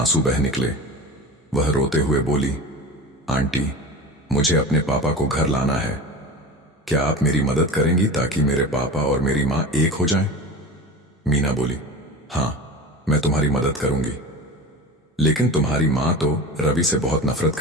बह निकले। वह रोते हुए बोली, आंटी, मुझे अपने पापा को घर लाना है। क्या आप मेरी मदद करेंगी ताकि मेरे पापा और मेरी मां एक हो जाएं? मीना बोली, हाँ, मैं तुम्हारी मदद करूंगी, लेकिन तुम्हारी मां तो रवि से बहुत नफरत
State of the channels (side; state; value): both; normal; correlation 0.32